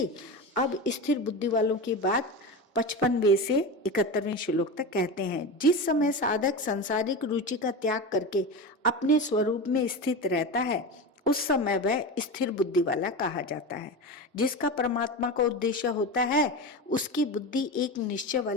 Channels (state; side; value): normal; both; correlation 0.23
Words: अब स्थिर बुद्धि वालों की बात 55वें से 71वें श्लोक तक कहते हैं। जिस समय साधक सांसारिक रुचि का त्याग करके अपने स्वरूप में स्थित रहता है उस समय वह स्थिर बुद्धि वाला कहा जाता है। जिसका परमात्मा का उद्देश्य होता है उसकी बुद्धि एक निश्चय